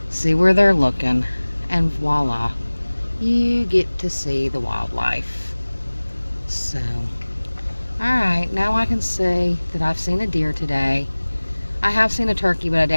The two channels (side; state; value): both; inverted; correlation -1.00